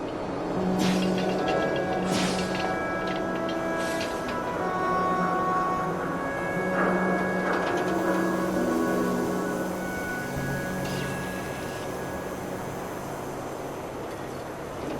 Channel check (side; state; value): both; identical; correlation 1.00